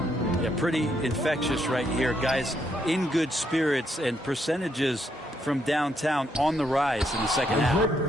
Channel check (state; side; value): normal; both; correlation 0.75